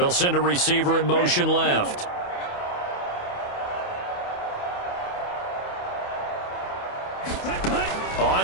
send a receiver in motion left. On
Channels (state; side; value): late; right; 28 ms